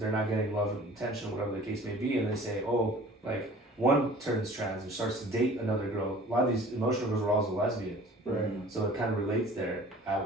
not getting love and attention, whatever the case may be, and they say, oh, like one turns trans and starts to date another girl. A lot of these emotional girls are also lesbians, Right. so it kind of relates there.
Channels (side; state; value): both; normal; correlation 0.47